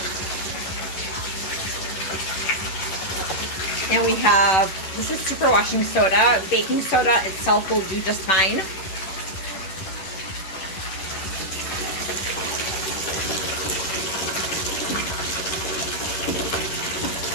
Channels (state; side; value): late; right; 11 ms